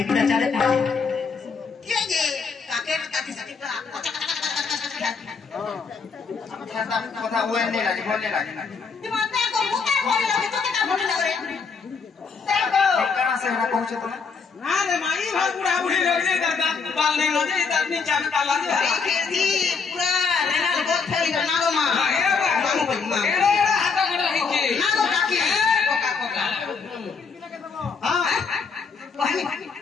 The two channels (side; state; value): right; quieter; 5.2 dB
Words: बिना चले के जे काके काकी सटी का खाता কথা ওই নেই লাগে বললে লাগে না दिमाग को मुका बोले लगे तो क्या बोले लगे देखो कहां से हरा पहुंचे तुम ना रे माई भर बुढ़ा बुढ़ी लगे दादा बाल नहीं लगे इधर नीचे में डाला दे खेती पूरा लेना बहुत फैल गया नागो मां नागो भाई मां एड़ा हाथा गड़ा हिके नागो काकी कोका कोका हां